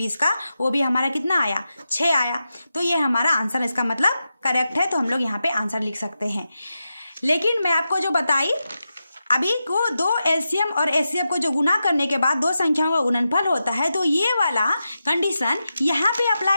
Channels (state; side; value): inverted; both; correlation -0.90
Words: का, वो भी हमारा कितना आया, 6 आया। तो ये हमारा आंसर, इसका मतलब करेक्ट है। तो हम लोग यहाँ पे आंसर लिख सकते हैं। लेकिन मैं आपको जो बताई अभी को, 2 एलसीएम और एचसीएफ को जो गुना करने के बाद 2 संख्याओं का गुणनफल होता है, तो ये वाला कंडीशन यहाँ पे